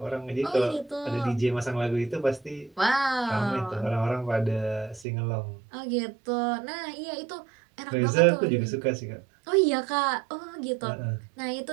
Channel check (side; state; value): left; drops out; at 5.1 s